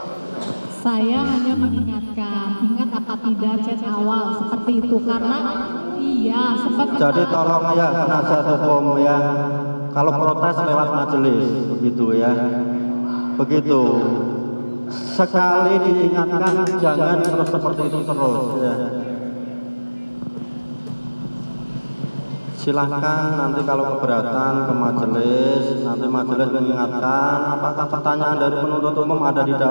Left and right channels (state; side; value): inverted; both; correlation -1.00